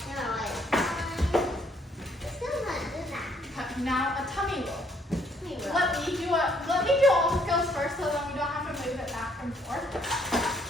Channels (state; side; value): normal; both; correlation 0.66